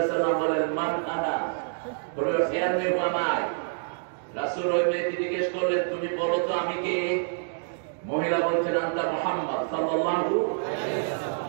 আলাইহি ওয়াসাল্লাম বলেন, মান আনা, বলে ফেয়ার মে হুয়ামাই। রাসূল ওই মেয়েকে জিজ্ঞেস করলেন, তুমি বলো তো আমি কে? মহিলা বলছেন, আনতা মুহাম্মদ সাল্লাল্লাহু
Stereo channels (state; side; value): silent; left; digital silence